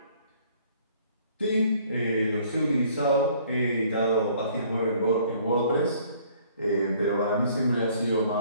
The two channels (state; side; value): inverted; both; correlation -0.59